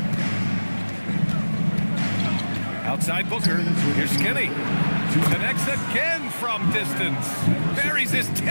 Outside Booker. Here's Skinny. Connects again from distance. Buries his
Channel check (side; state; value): both; inverted; correlation -1.00